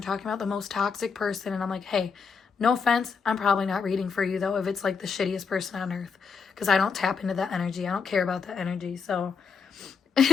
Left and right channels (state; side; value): quieter; right; 5.6 dB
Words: talking about the most toxic person, and I'm like, hey, no offense, I'm probably not reading for you though if it's like the shittiest person on earth, because I don't tap into that energy. I don't care about that energy. So